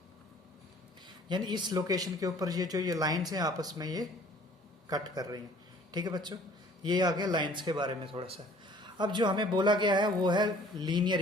यानी इस लोकेशन के ऊपर ये जो ये लाइन्स हैं आपस में ये कट कर रही हैं। ठीक है बच्चों, ये आ गया लाइन्स के बारे में थोड़ा सा। अब जो हमें बोला गया है वो है लीनियर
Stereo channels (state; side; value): normal; both; correlation 0.53